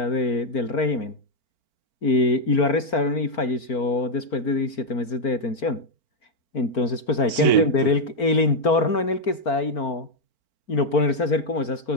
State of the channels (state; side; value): late; right; 4.4 ms